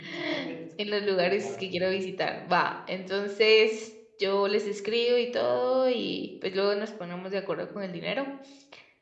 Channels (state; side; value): identical; both; correlation 1.00